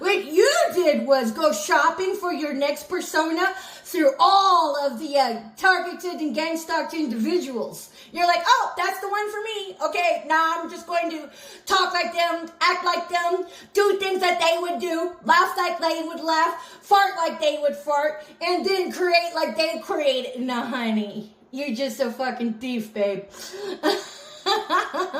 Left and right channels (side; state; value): both; identical; correlation 1.00